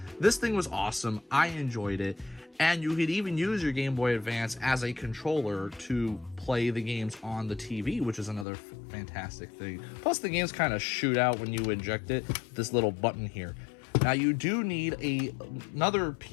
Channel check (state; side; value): drops out; right; at 8.5 s